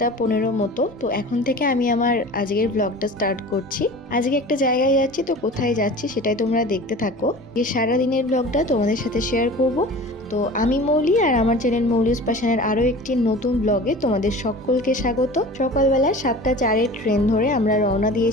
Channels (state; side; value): normal; both; correlation 0.39